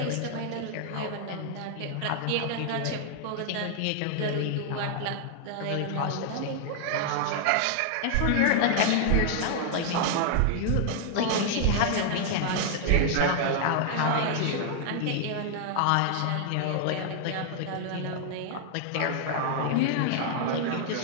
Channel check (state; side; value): different; both; correlation 0.00